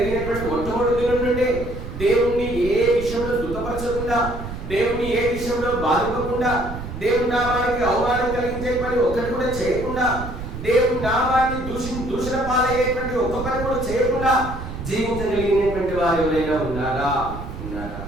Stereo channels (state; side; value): noise; right; rumble, 9 dB below the sound